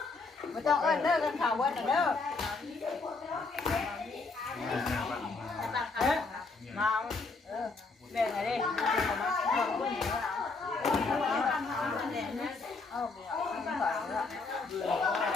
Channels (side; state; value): right; quieter; 3.9 dB